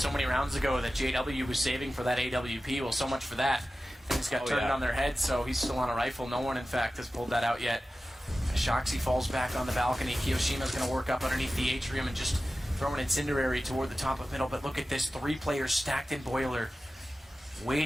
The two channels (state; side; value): normal; both; correlation 0.94